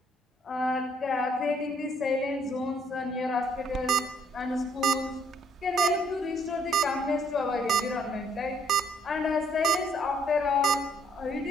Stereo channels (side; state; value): both; normal; correlation 0.66